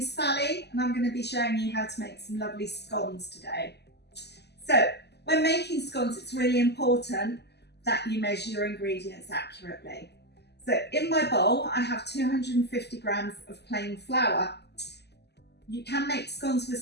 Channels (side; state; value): right; late; 0.49 ms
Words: Sally and I'm going to be showing you how to make some lovely scones today. So when making scones, it's really important that you measure your ingredients accurately. So in my bowl I have 250 grams of plain flour. You can make scones with